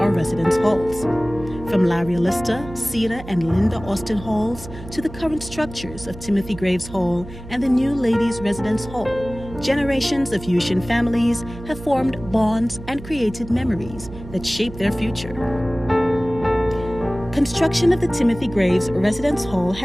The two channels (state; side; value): noise; right; hum, 14 dB below the sound